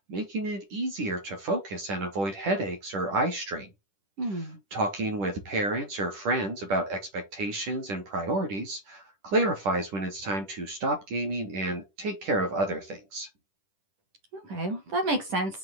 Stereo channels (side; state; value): left; late; 10 ms